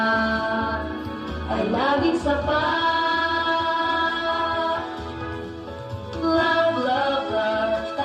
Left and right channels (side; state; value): both; identical; correlation 1.00